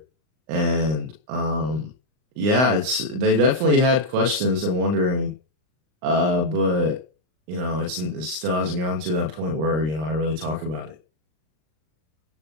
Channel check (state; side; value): late; left; 39 ms